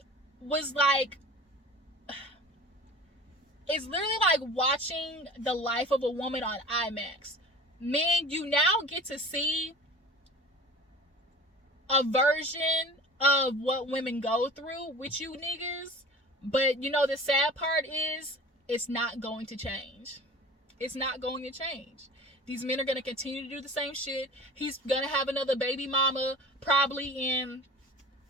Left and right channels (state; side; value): normal; both; correlation 0.40